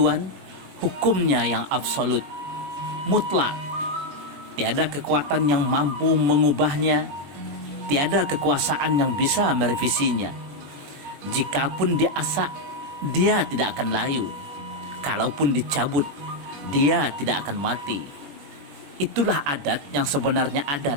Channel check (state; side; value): late; left; 21 ms